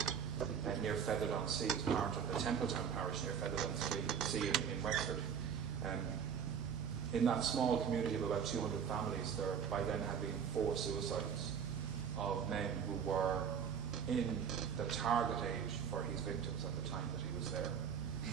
near Featherdown-Sea, is part of the Templetown parish near Featherdown-Sea in Wexford. In that small community of about 200 families, there by then had been 4 suicides of men who were in the target age for his victims at the time that he was there.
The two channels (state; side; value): quieter; left; 7.6 dB